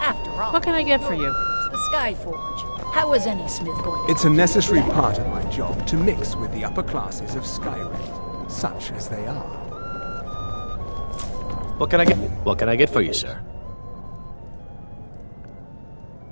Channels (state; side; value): inverted; both; correlation -1.00